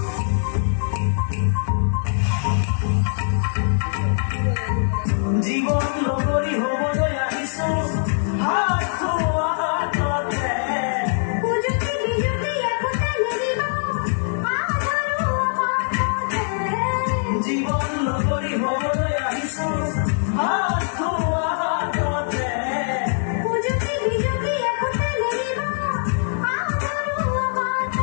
জীবন লগৰি হবলৈ আহিছো হাত থোৱা হাততে পুজুতি বিজুতি একোটা নেৰিব আধাৰো আমাতে জীবন লগৰি হবলৈ আহিছো হাত থোৱা হাততে পুজুতি বিজুতি একোটা নেৰিব আধাৰো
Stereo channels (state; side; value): silent; right; digital silence